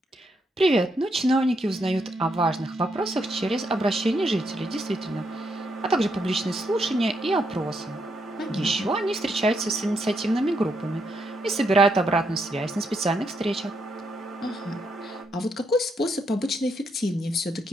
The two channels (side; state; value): both; normal; correlation 0.78